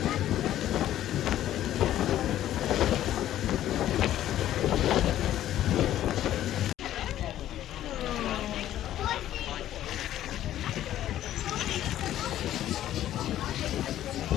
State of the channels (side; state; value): right; quieter; 12.5 dB